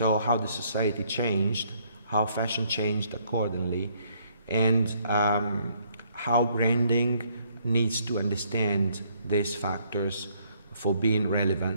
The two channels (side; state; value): both; inverted; correlation -0.67